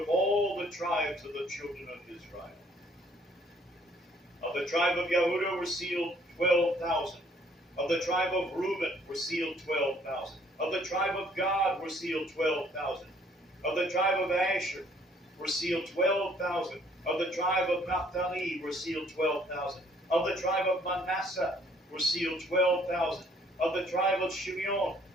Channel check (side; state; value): both; normal; correlation 0.62